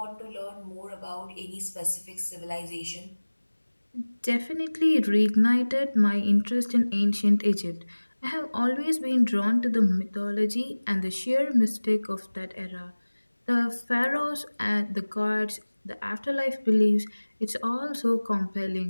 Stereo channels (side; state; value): both; inverted; correlation -1.00